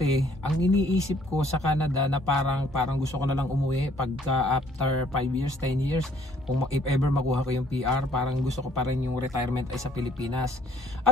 ang iniisip ko sa Canada na parang gusto ko na lang umuwi pagka after 5 years, 10 years, kung if ever makuha ko yung PR, parang gusto ko pa rin yung retirement ay sa Pilipinas.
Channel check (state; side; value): normal; both; correlation 0.62